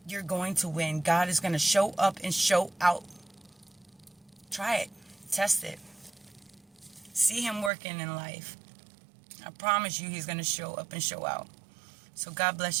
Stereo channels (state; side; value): drops out; left; at 7.7 s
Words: You're going to win. God is going to show up and show out. Try it. Test it. See Him working in life. I promise you He's going to show up and show out. So God